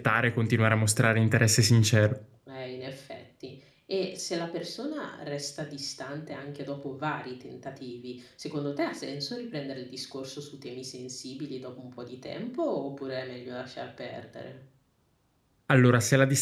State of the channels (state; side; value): identical; both; correlation 1.00